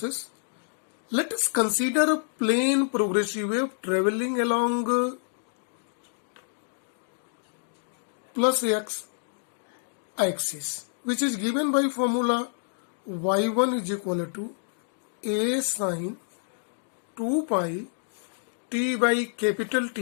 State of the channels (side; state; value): right; silent; digital silence